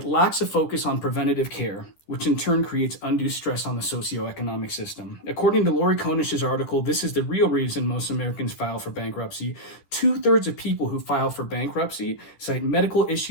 lacks a focus on preventative care, which in turn creates undue stress on the socioeconomic system. According to Lori Konish's article, this is the real reason most Americans file for bankruptcy. 2/3 of people who file for bankruptcy cite medical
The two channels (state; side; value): late; right; 13 ms